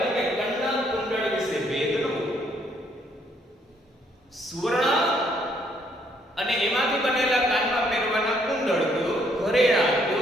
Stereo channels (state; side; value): normal; both; correlation 0.68